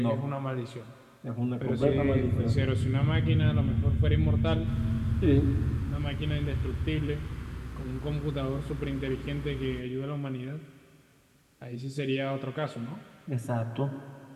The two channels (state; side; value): identical; both; correlation 1.00